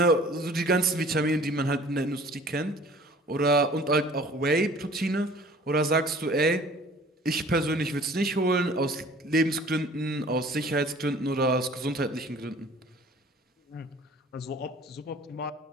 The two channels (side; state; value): both; normal; correlation 0.50